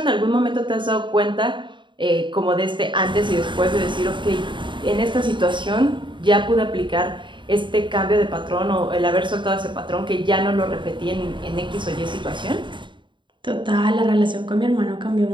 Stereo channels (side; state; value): left; late; 0.23 ms